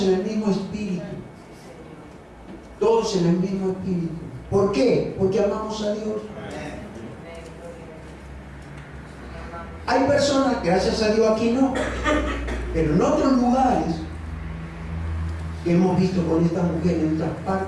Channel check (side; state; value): both; identical; correlation 1.00